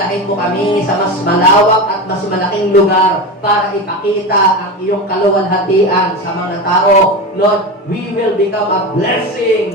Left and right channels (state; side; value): normal; both; correlation 0.23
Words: mo kami sa mas malawak at mas malaking lugar para ipakita ang iyong kaluwalhatian sa mga tao. Lord, we will become a